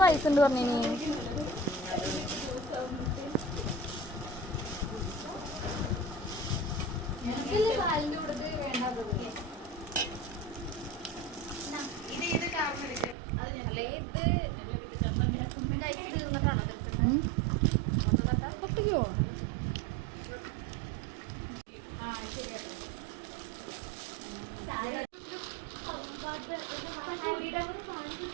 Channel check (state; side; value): drops out; left; at 13.2 s